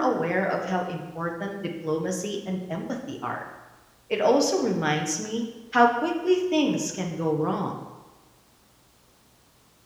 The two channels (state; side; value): identical; both; correlation 1.00